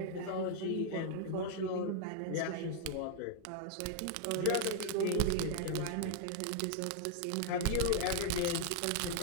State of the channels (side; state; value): both; different; correlation 0.00